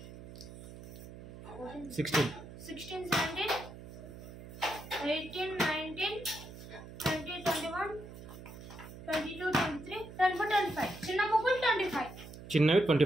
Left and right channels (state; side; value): noise; right; hum, 14 dB below the sound